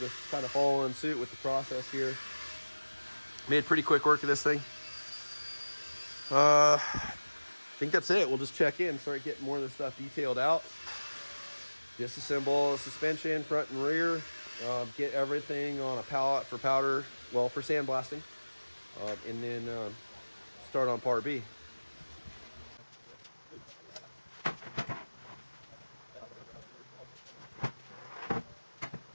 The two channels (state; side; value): inverted; both; correlation -1.00